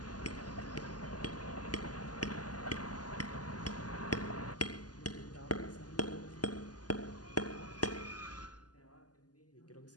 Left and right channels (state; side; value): late; right; 0.69 ms